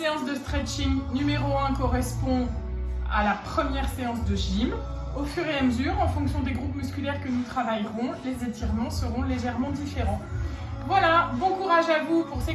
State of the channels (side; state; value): both; identical; correlation 1.00